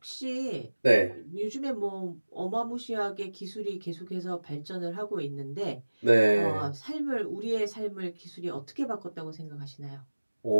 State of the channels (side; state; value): both; inverted; correlation -1.00